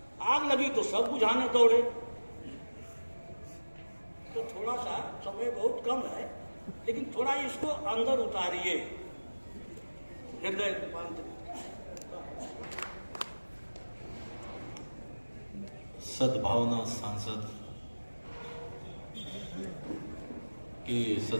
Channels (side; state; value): both; inverted; correlation -1.00